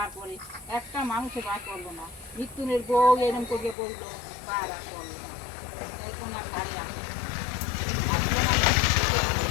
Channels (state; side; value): drops out; right; at 3.8 s